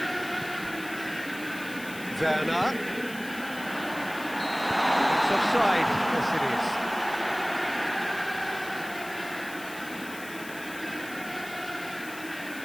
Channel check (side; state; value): left; noise; hiss, 15 dB below the sound